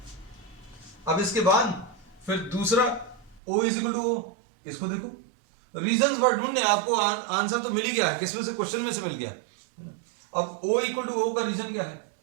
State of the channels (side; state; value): left; drops out; at 3.4 s